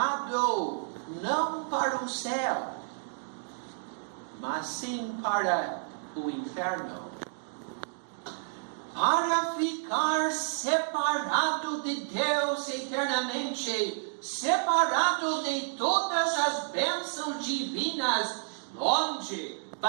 não para o céu, mas sim para o inferno, para ficar separado de Deus eternamente, separado de todas as bênçãos divinas, longe,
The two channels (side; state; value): left; silent; digital silence